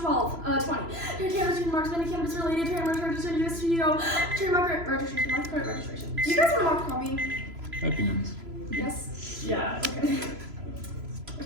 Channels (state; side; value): late; left; 3.0 ms